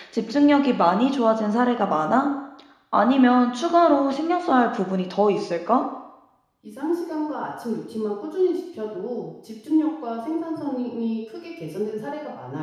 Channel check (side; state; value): both; identical; correlation 1.00